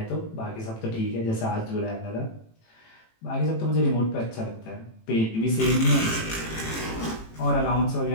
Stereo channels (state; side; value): late; right; 18 ms